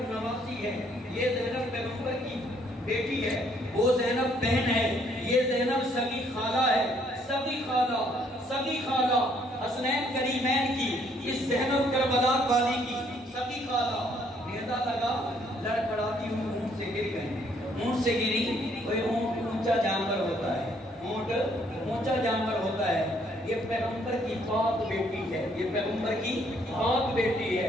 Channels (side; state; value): both; normal; correlation 0.66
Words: نواسی ہے، یہ زینب پیغمبر کی بیٹی ہے، وہ زینب بہن ہے، یہ زینب سگی خالہ ہے، سگی خالہ حسنین کریمین کی، اس زینب کربلا والی کی سگی خالہ، نیزہ لگا، لڑکڑاتی ہوں اونٹ سے گر گئے، اونٹ سے گری، کوئی اونٹ اونچا جانور ہوتا ہے، اونٹ اونچا جانور ہوتا ہے، یہ پیغمبر کی پاک بیٹی ہے، یہ پیغمبر کی پاک بیٹی ہے،